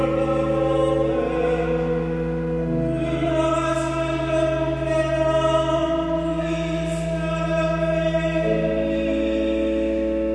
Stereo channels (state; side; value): identical; both; correlation 1.00